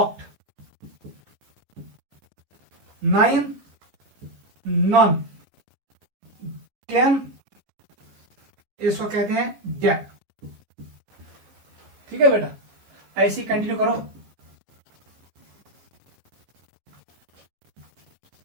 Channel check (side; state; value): left; late; 15 ms